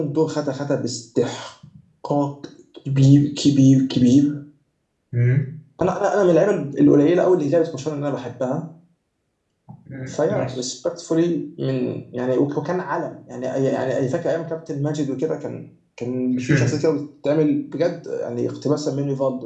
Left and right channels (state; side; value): identical; both; correlation 1.00